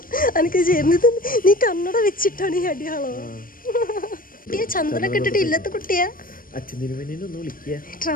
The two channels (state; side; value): late; right; 0.41 ms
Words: എനിക്ക് ചേർന്നത് നീ കണ്ണട വെച്ചിട്ടാണ് ഈ അടിയാളോ? കുട്ടിയെ ചന്ദ്രനൊക്കെ ഇട്ടിട്ട് ഇല്ലത്തെ കുട്ടിയാ. അച്ഛൻ തിരുമേനിയൊന്ന് വിളിക്കുക.